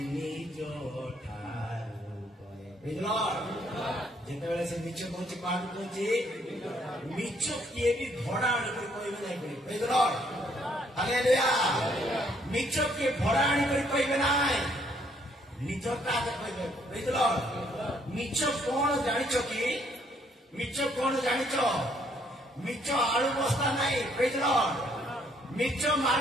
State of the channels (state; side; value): normal; both; correlation 0.67